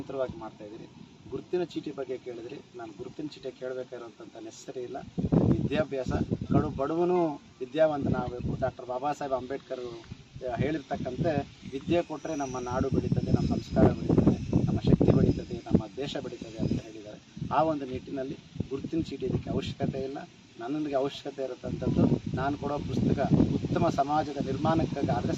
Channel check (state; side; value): identical; both; correlation 1.00